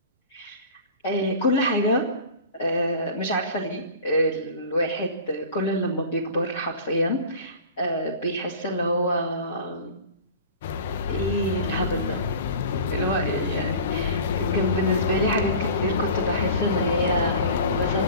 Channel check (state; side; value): inverted; both; correlation -0.39